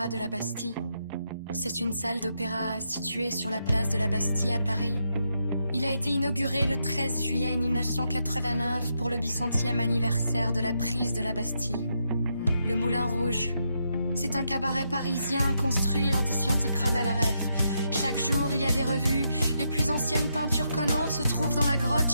de la Bastille. C'est une salle d'opéra située sur la place de la Bastille à Paris. Il a été inauguré le 13 juillet 1989 pour le 100e anniversaire de la prise de la Bastille. Le Moulin Rouge. C'est un cabaret parisien construit lors des sciences de Cravalaref. Chaque jour, il y a des revues. Les plus anciennes peintures connues se trouvent dans la grotte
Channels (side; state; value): both; inverted; correlation -0.81